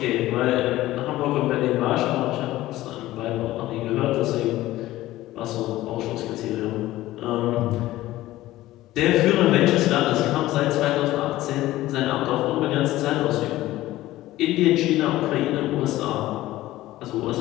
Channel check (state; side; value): quieter; right; 16.1 dB